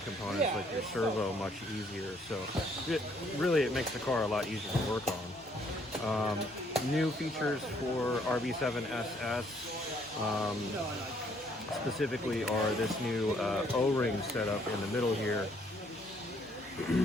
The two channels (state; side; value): normal; both; correlation 0.66